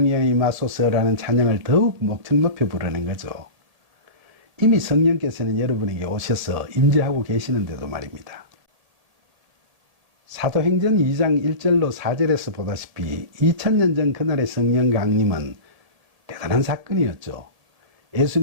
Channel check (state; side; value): late; left; 1.8 ms